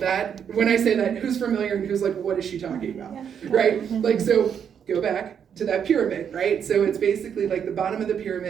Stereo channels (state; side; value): quieter; left; 7.9 dB